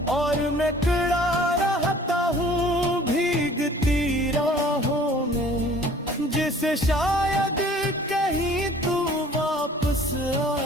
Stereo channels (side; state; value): both; normal; correlation 0.51